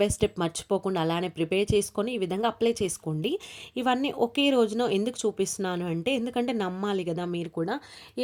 బై స్టెప్ మర్చిపోకుండా అలానే ప్రిపేర్ చేసుకొని ఈ విధంగా అప్లై చేసుకోండి. ఇవన్నీ ఒకే రోజున ఎందుకు చూపిస్తున్నాను అంటే, ఎందుకంటే నమ్మాలి కదా మీరు కూడా.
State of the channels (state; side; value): identical; both; correlation 1.00